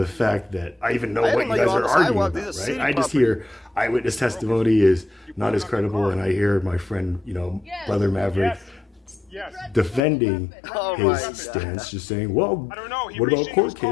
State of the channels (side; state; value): right; drops out; at 10.0 s